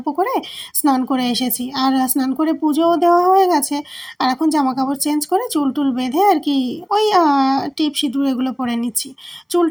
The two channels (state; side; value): identical; both; correlation 1.00